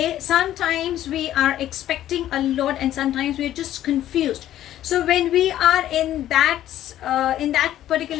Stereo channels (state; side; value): quieter; right; 12.6 dB